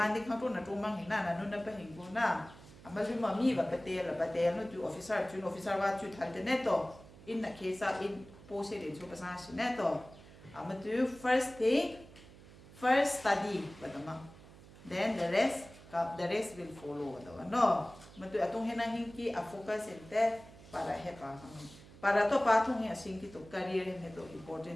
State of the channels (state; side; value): noise; right; hum, 20 dB below the sound